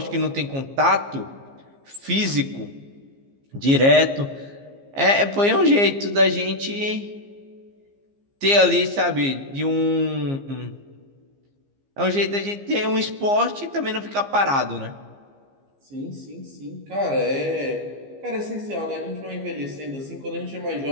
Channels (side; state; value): left; late; 15 ms